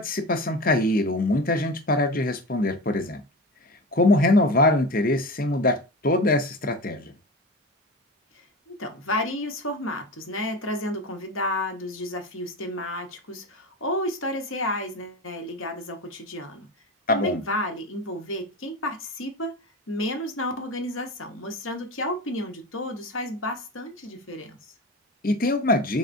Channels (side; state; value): both; normal; correlation 0.28